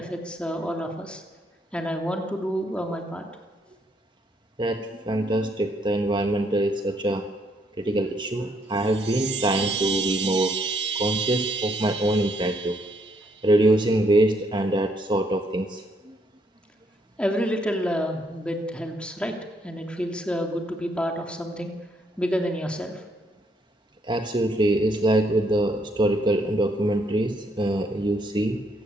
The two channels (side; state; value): both; normal; correlation 0.72